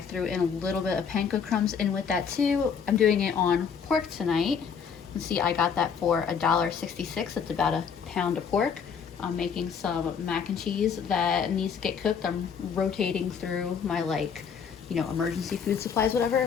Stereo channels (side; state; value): right; quieter; 6.8 dB